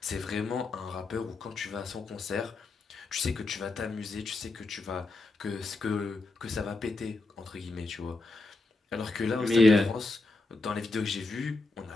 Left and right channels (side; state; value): right; quieter; 3.3 dB